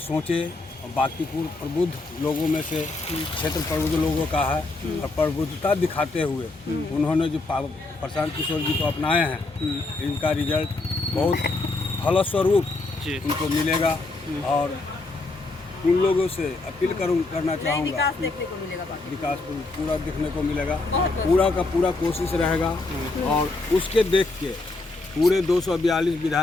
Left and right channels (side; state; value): right; quieter; 3.3 dB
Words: और बांकीपुर प्रबुद्ध लोगों में से क्षेत्र प्रबुद्ध लोगों का है और प्रबुद्धता दिखाते हुए उन्होंने जो प्रशांत किशोर जी को अपनाए हैं, इनका रिजल्ट बहुत फलस्वरूप उनको मिलेगा। और उन लोगों से अपील करना चाहूँगा, विकास पूरा देखने को मिलेगा, पूरा का पूरा कोशिश रहेगा और उसके देख के पूरे 242